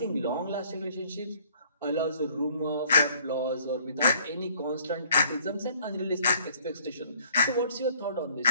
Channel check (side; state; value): both; inverted; correlation -0.60